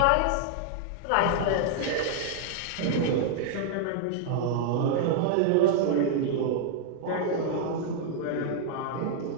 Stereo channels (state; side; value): different; both; correlation -0.01